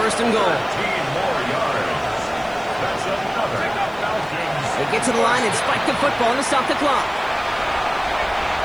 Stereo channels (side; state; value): left; noise; hiss, 27 dB below the sound